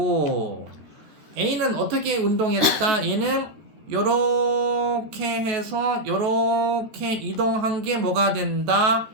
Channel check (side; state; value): left; late; 14 ms